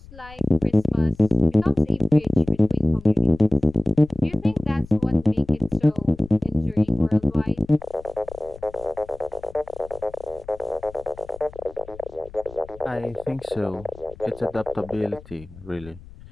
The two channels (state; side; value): noise; left; rumble, 19 dB below the sound